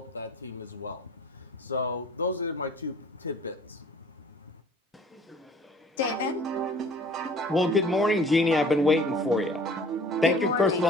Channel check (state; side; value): normal; both; correlation 0.51